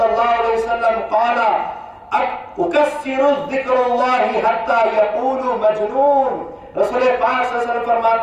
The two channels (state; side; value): identical; both; correlation 1.00